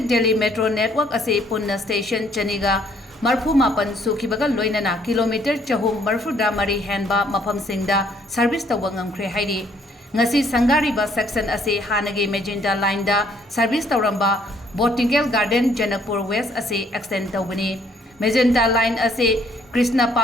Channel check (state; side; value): normal; both; correlation 0.65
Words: Delhi Metro Network ase punna station chaniga marfu mapan sukhibaga loinana kilometer chahum marfuda mari henba mafam singda service tawang ngamkhre hairi. Ngasi sangariba section ase hanage magenta line da service tawramba Botanical Garden Janakpur West ase extend tawbani. Magenta line ase Krishna